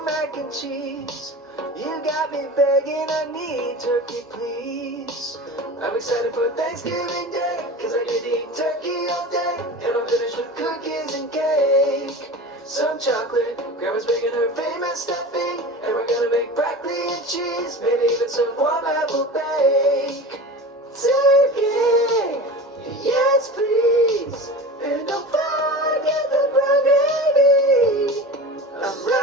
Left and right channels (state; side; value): normal; both; correlation 0.32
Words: mac and cheese. You got me begging, I need turkey, please. I'm excited for Thanksgiving Day, cause I get to eat turkey all day. And I'm finished with cookies and cake. Some chocolate, grandma's making her famous stuffing. And we're gonna make broccoli and cheese, maybe even some warm apple bake. Turkey, yes please. And don't forget the brown gravy. I'm